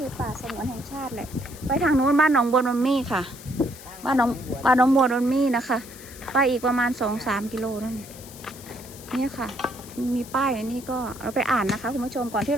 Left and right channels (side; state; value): left; noise; hiss, 17 dB below the sound